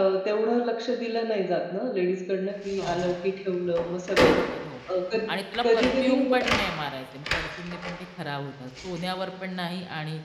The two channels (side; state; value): both; identical; correlation 1.00